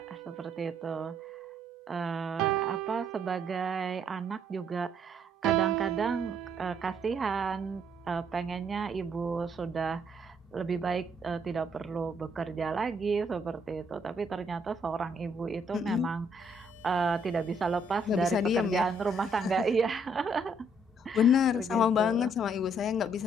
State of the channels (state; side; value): normal; both; correlation 0.68